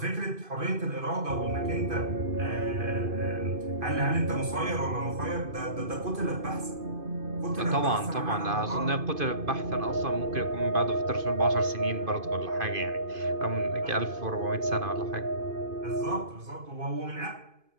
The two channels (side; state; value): left; late; 2.5 ms